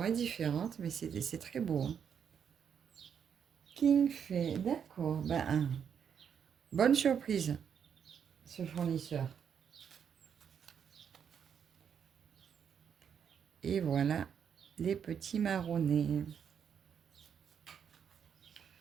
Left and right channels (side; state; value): left; quieter; 7.7 dB